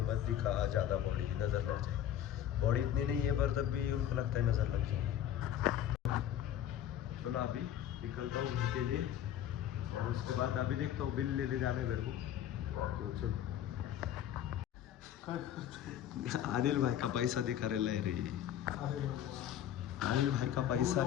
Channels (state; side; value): quieter; right; 10.8 dB